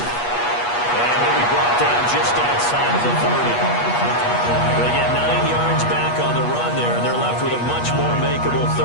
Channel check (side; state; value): right; late; 8.3 ms